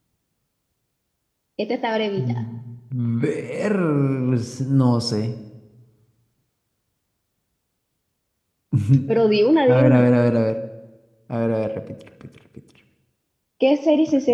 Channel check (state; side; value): identical; both; correlation 1.00